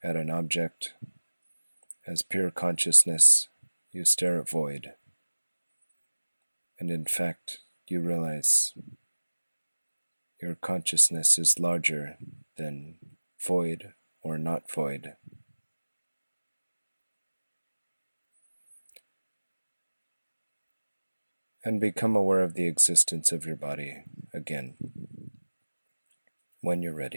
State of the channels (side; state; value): both; inverted; correlation -1.00